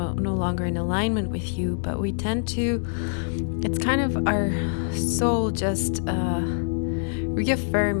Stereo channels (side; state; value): right; silent; digital silence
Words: longer in alignment with you. But we tend to, it's kind of our soul just